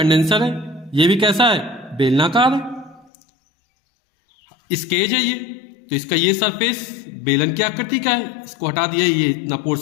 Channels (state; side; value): drops out; right; at 3.1 s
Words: है, ये भी कैसा है, बेलनाकार है। स्केज है ये, तो इसका ये सरफेस बेलन की आकृति का है, इसको हटा दिया, ये इतना